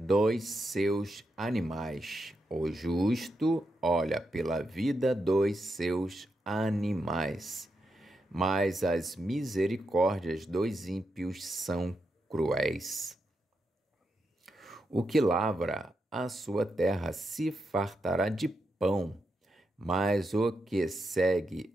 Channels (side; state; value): both; normal; correlation 0.85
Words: seus animais. O justo olha pela vida dos seus animais. Mas as misericórdias dos ímpios são cruéis. O que lavra a sua terra se fartará de pão, mas o que segue